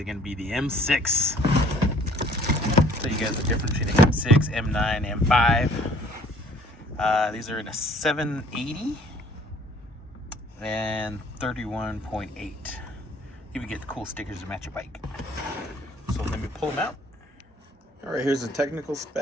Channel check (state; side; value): normal; both; correlation 0.56